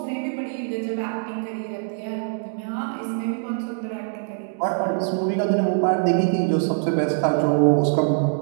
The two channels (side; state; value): left; silent; digital silence